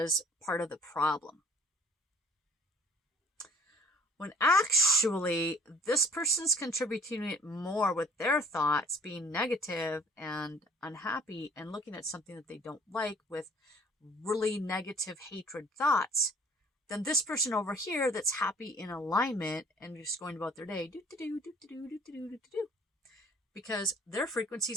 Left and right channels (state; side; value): normal; both; correlation 0.52